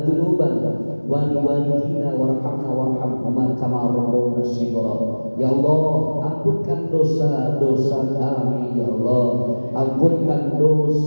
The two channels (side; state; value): both; inverted; correlation -1.00